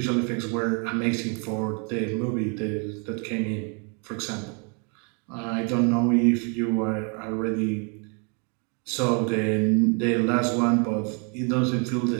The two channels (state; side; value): quieter; left; 36.7 dB